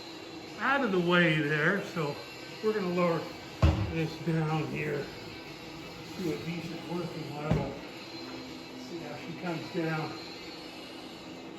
out of the way there, so we're going to lower this down here to a decent working level. See how she comes down.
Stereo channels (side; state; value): both; identical; correlation 1.00